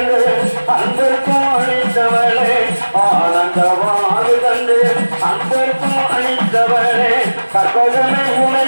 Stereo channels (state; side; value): inverted; both; correlation -1.00